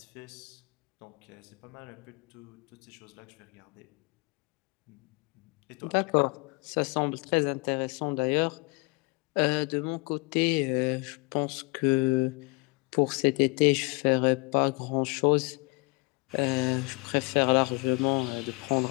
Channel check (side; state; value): right; quieter; 28.6 dB